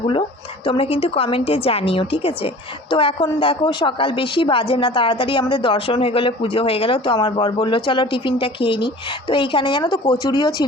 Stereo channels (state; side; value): normal; both; correlation 0.43